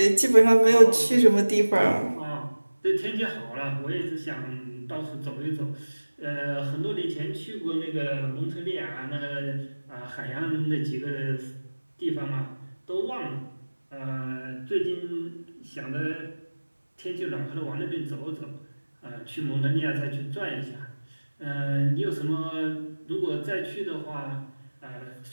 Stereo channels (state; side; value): inverted; both; correlation -1.00